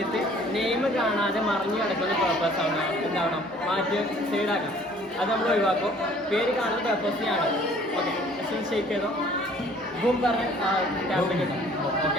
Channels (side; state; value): both; normal; correlation 0.55